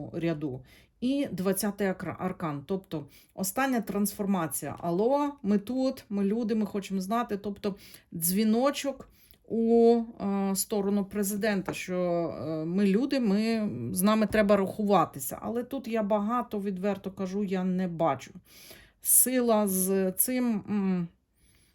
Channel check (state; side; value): identical; both; correlation 1.00